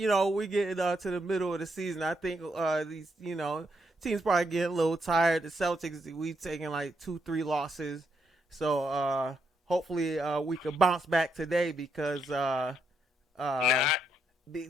get to the middle of the season. I think these teams probably getting a little tired. The Celtics, we taking like 2-3 losses, so hopefully we can bounce back today because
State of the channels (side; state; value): both; normal; correlation 0.78